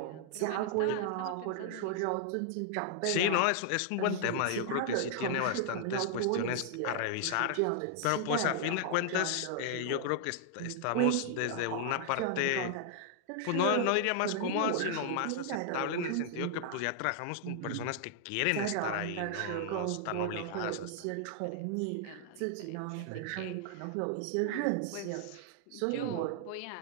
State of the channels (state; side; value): different; both; correlation 0.00